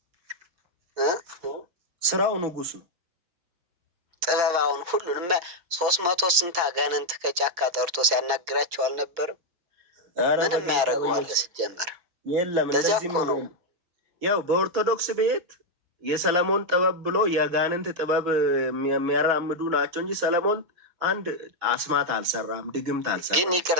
ስራው ንጉስ ነው። ጥበባውን ሁሉንም 300 ስንት አጋንንት ከጫካ ጠርቶ ሲያናግራቸው አልነበርም? ምንም ያደርገዋል ሲጀመር የለም። እንደዚህ ነው። ያው በኦርቶዶክስ ቤት የሰለሞን ጥበብ ብሎ የአጋንንት ጥበብ የሚያራምዱ ናቸው እንጂ ሰለሞን አንድ አስማት አልሰራም፣ ድግምት አልሰራም። ግን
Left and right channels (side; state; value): left; late; 5.8 ms